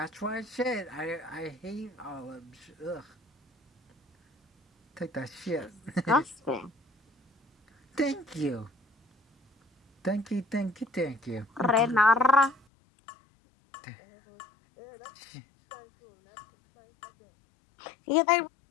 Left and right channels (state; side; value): drops out; right; at 12.7 s